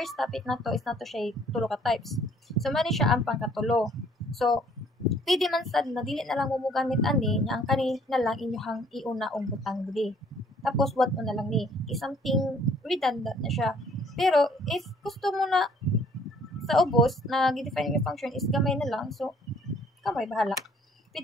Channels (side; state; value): both; normal; correlation 0.59